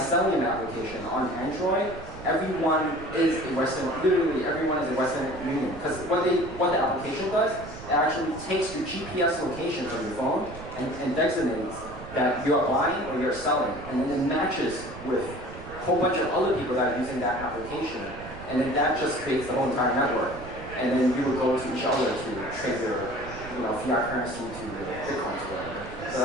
application on Android, everyone is a Western, literally everyone is a Western Union. Because what the application does, it actually takes your GPS location from your phone and designates that you're buying or you're selling, and then it matches with a whole bunch of other people that are using that application, and then that just creates the whole entire network. And then you would go to each other to trade your fiat currency to Bitcoin or whatever. So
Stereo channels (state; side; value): noise; right; rumble, 14 dB below the sound